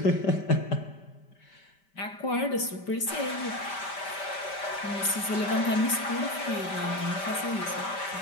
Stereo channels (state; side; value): late; right; 5.1 ms